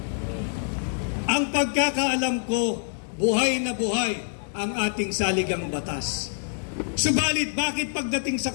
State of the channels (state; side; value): silent; right; digital silence